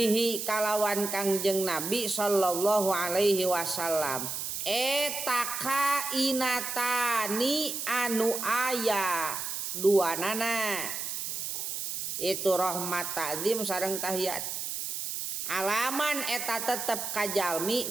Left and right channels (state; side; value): noise; right; hiss, 4 dB below the sound